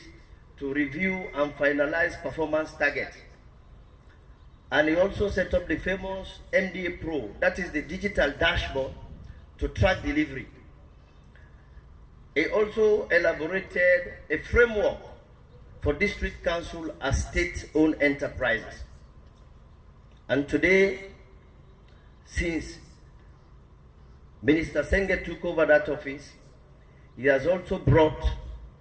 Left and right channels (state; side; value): identical; both; correlation 1.00